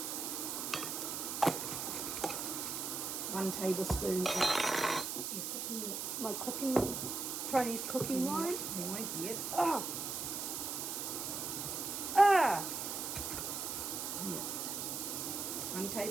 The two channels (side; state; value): right; noise; hiss, 3 dB below the sound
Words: 1 tablespoon of Chinese cooking wine. Yep. Ah. Yep. 1